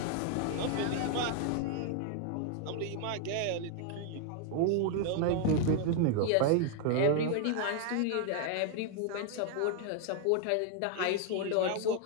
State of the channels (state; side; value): different; both; correlation 0.00